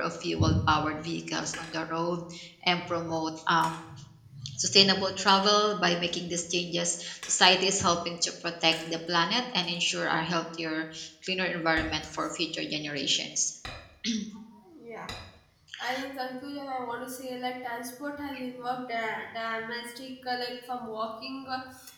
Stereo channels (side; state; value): both; identical; correlation 1.00